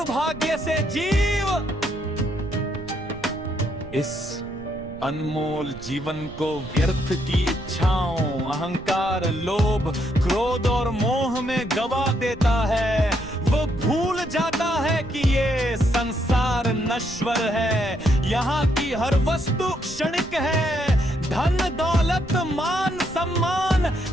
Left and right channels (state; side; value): noise; right; rumble, 17 dB below the sound